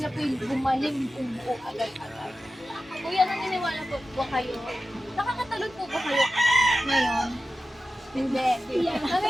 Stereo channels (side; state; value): both; normal; correlation 0.93